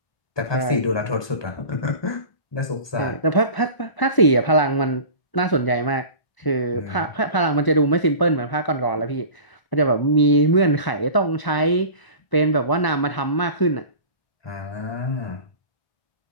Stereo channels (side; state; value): right; late; 1.0 ms